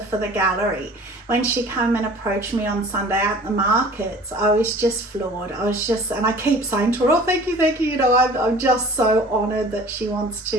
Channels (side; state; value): both; normal; correlation 0.46